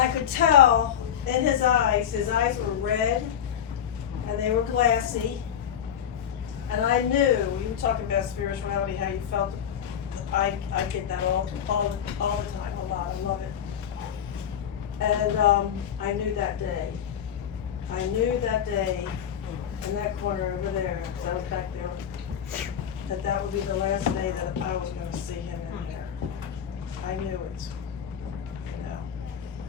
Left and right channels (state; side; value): quieter; right; 9.0 dB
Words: could tell in his eyes were red, and they were glassy, and I knew, you were talking about spirituality, how you felt. I get that all the time, a lot. I love it. And I knew that day. In that corner over there, because I was back there, that would be the last day that I was going to see him in there. I knew it.